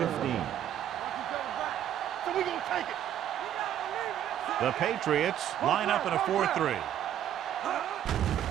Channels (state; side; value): quieter; left; 10.8 dB